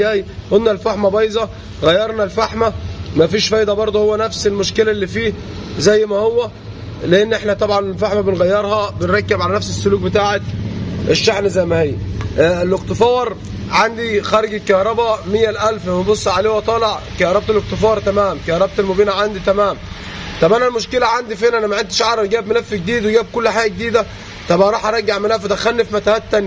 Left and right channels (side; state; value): both; identical; correlation 1.00